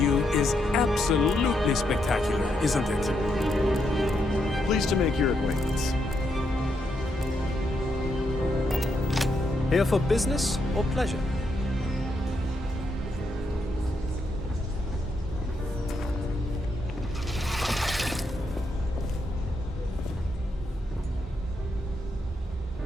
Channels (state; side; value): normal; both; correlation 0.79